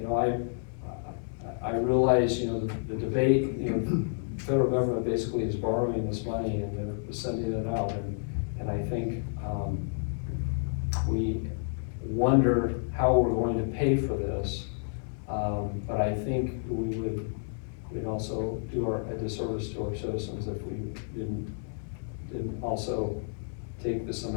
I realize, the debate, the federal government basically is borrowing this money and they're sending it out, and I think we wonder how we're going to pay for this, but I think we'd also do a disservice to our citizens if we didn't also take this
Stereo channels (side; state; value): right; silent; digital silence